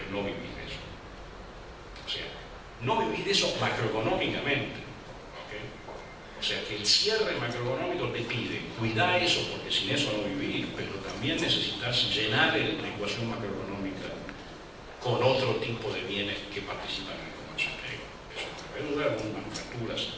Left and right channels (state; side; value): identical; both; correlation 1.00